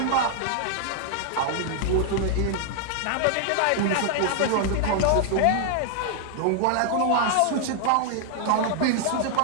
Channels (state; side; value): different; both; correlation 0.00